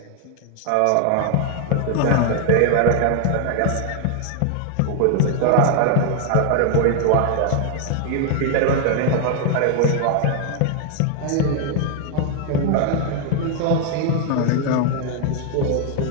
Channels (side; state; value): both; different; correlation 0.00